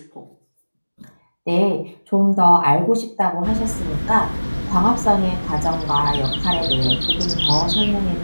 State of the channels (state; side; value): inverted; both; correlation -1.00